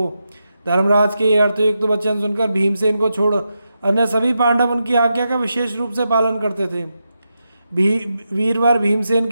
धर्मराज के ये अर्थयुक्त वचन सुनकर भीमसेन को छोड़ अन्य सभी पांडव उनकी आज्ञा का विशेष रूप से पालन करते थे। वीरवर भीमसेन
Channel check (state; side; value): inverted; both; correlation -0.87